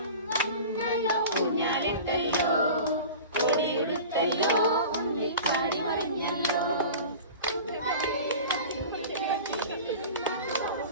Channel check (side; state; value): both; inverted; correlation -0.37